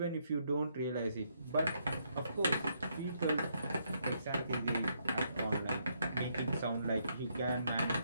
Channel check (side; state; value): both; inverted; correlation -0.75